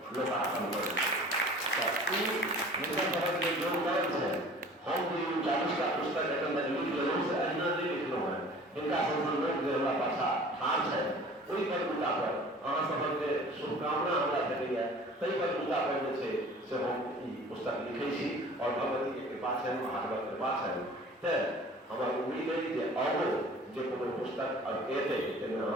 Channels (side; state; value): both; normal; correlation 0.46